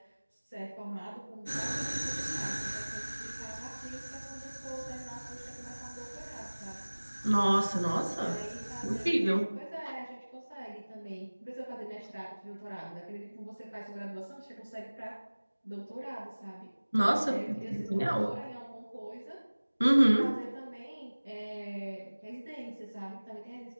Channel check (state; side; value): inverted; both; correlation -1.00